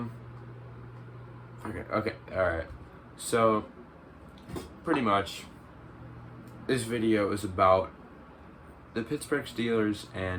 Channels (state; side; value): identical; both; correlation 1.00